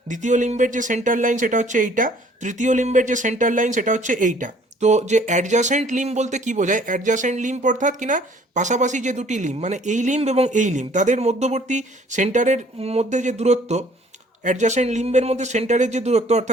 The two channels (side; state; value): both; normal; correlation 0.57